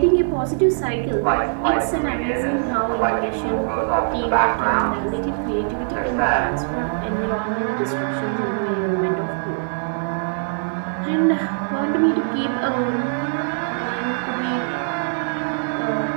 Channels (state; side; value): silent; left; digital silence